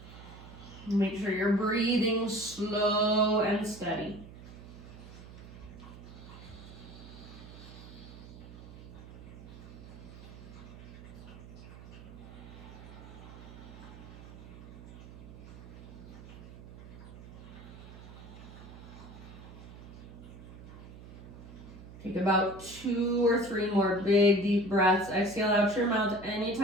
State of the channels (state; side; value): noise; right; hum, 15 dB below the sound